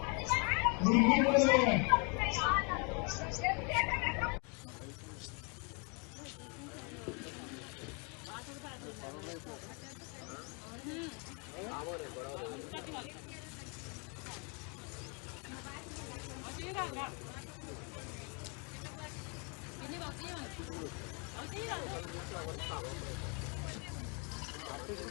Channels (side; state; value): right; quieter; 34.4 dB